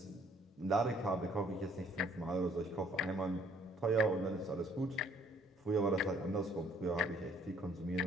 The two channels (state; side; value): normal; both; correlation 0.61